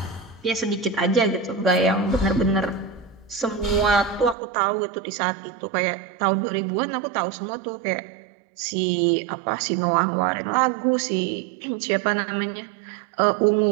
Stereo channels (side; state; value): left; drops out; at 4.4 s